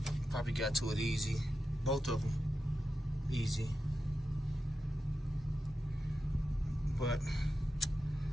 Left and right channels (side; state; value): both; normal; correlation 0.90